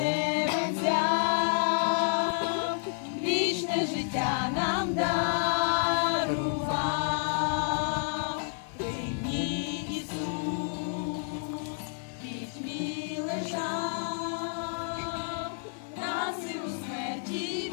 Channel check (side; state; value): right; silent; 55 dB below the other